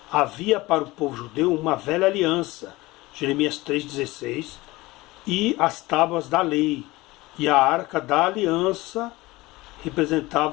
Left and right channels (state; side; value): quieter; right; 20.3 dB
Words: Havia para o povo judeu uma velha aliança, Jeremias 3,16, e as tábuas da lei, e a arca da aliança